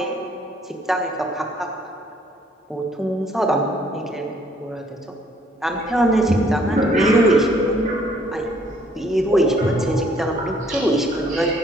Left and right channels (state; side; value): normal; both; correlation 0.63